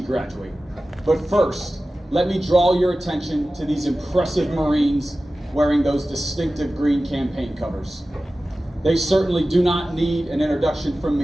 But first, let me draw your attention to these impressive Marines wearing those distinctive green campaign covers. They certainly do not need an introduction from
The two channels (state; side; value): normal; both; correlation 0.95